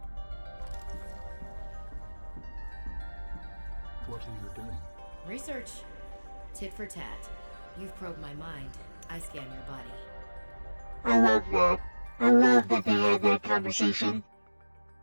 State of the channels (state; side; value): inverted; both; correlation -1.00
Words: What are you doing? Research. Tit for tat. You've probed my mind. I scan your body. I love that. I love that they had that conversation.